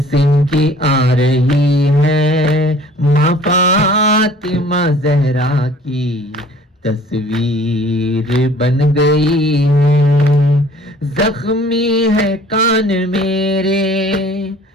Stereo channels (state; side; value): normal; both; correlation 0.52